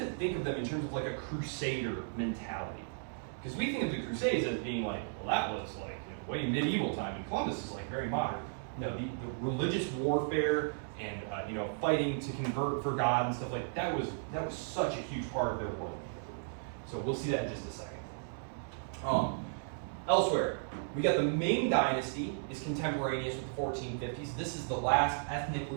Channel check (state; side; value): silent; left; digital silence